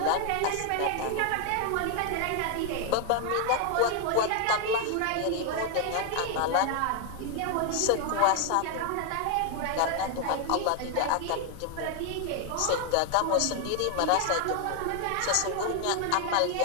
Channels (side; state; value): both; different; correlation 0.01